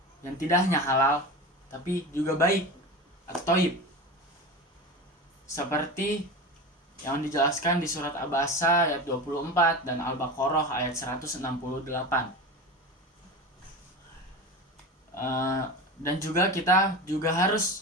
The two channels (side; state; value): both; normal; correlation 0.28